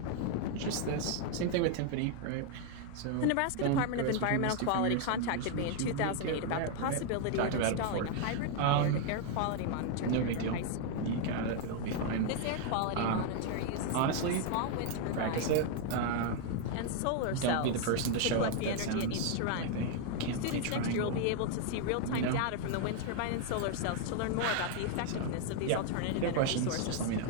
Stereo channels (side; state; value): both; different; correlation 0.00